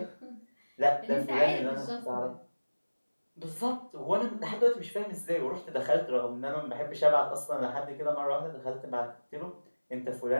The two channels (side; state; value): both; inverted; correlation -1.00